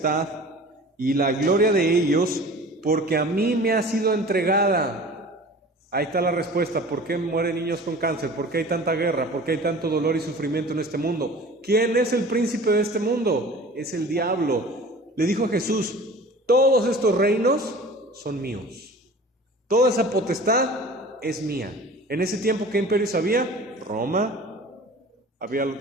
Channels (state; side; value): normal; both; correlation 0.42